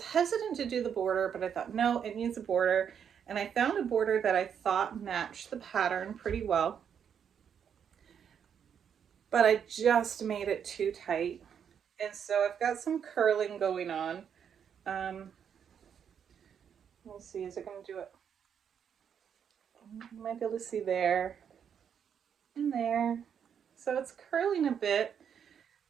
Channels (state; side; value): quieter; left; 7.9 dB